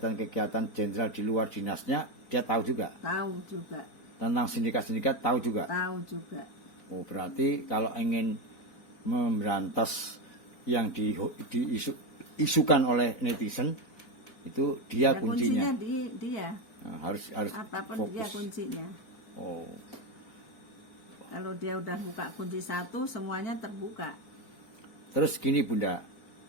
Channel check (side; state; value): right; late; 4.4 ms